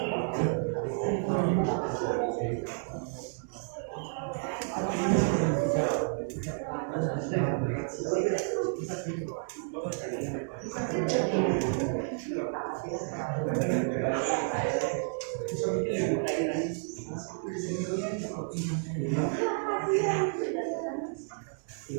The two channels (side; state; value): left; silent; 57 dB below the other